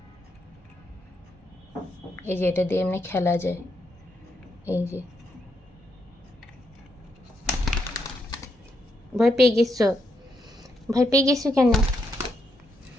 এই যে এটা দিয়ে এমনি খেলা যায়। এই যে ভয় পেয়ে গেছো? ভয় পেয়ে গেছো কেন?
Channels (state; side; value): normal; both; correlation 0.79